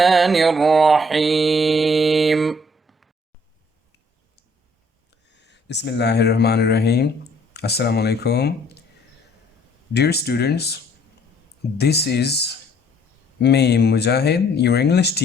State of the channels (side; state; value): both; normal; correlation 0.61